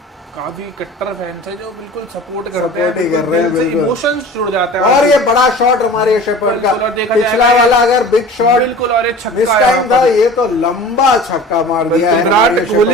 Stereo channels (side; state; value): both; normal; correlation 0.40